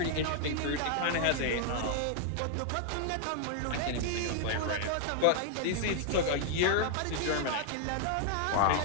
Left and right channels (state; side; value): different; both; correlation 0.00